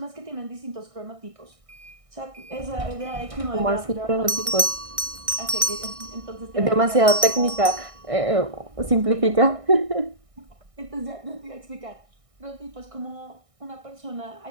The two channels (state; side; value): late; left; 1.6 ms